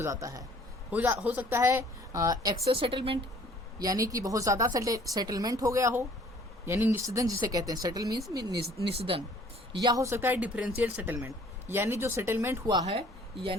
जाता है, हो सकता है एक्सेस सेटलमेंट, यानी कि बहुत ज़्यादा सेटलमेंट हो गया हो, यानी निषेधन जिसे कहते हैं, सेटल मीन्स निषेधन। या हो सकता है डिफरेंशियल सेटलमेंट, यानी जो सेटलमेंट हुआ है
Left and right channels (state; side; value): normal; both; correlation 0.55